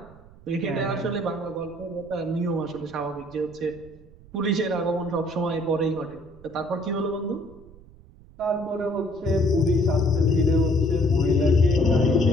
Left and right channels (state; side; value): noise; right; rumble, 23 dB below the sound